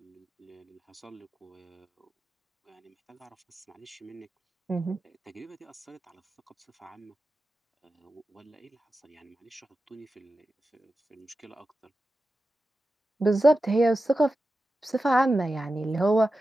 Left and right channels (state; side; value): normal; both; correlation 0.92